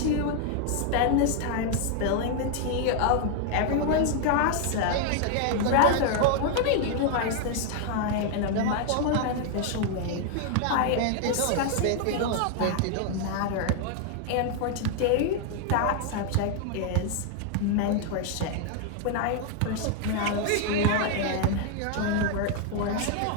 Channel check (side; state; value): both; different; correlation 0.00